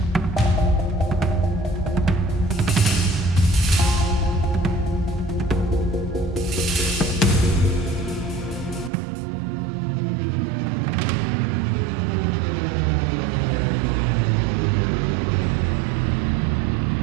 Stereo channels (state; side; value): drops out; left; at 8.9 s